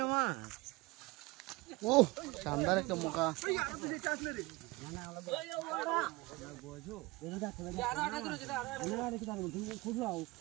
মাছ ও শানদার একটা মুখা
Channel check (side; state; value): left; quieter; 22.9 dB